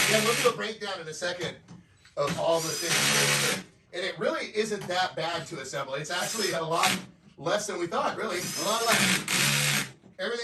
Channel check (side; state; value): both; identical; correlation 1.00